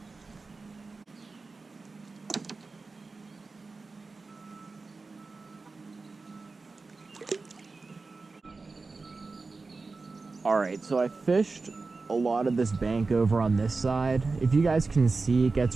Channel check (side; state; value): left; quieter; 3.9 dB